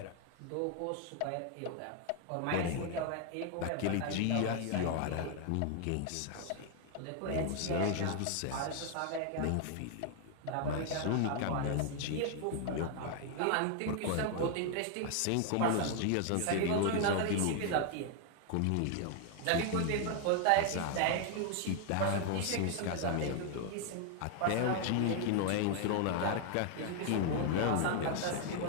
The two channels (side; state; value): both; different; correlation 0.00